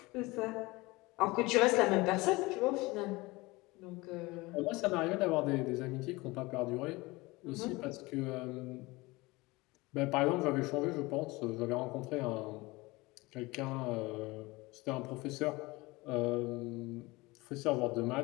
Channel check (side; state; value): right; quieter; 22.5 dB